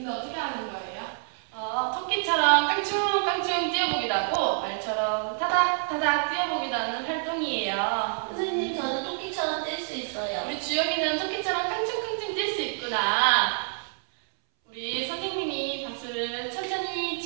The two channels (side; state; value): left; silent; 60 dB below the other